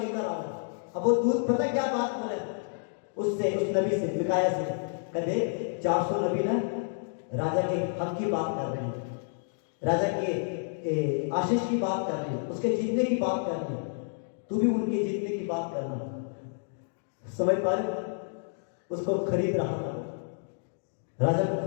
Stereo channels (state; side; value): silent; right; digital silence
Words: आओ। अब वो दूत पता क्या बात बोले उससे, उस नबी से, मिकाया से, कहते 400 नबी ना राजा के हक की बात कर रहे हैं, राजा के आशीष की बात कर रहे हैं, उसके जीतने की बात कर रहे हैं, तू भी उनके जीतने की बात करना। समझ पा रहे? उसको खरीद रहा था, राजा को